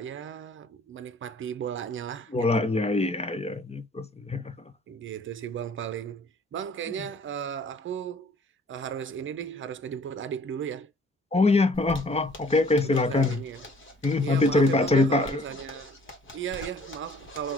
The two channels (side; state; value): both; normal; correlation 0.55